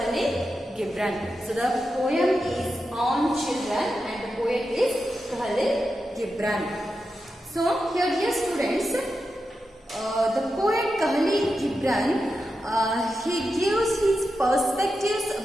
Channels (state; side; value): normal; both; correlation 0.89